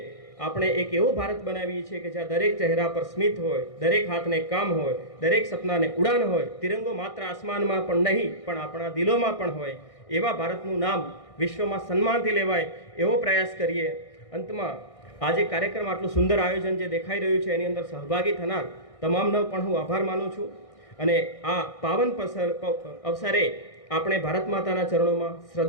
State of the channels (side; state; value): right; late; 1.6 ms